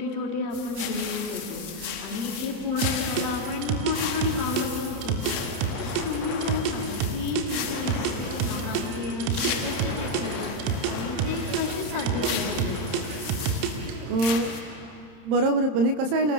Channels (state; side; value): late; left; 31 ms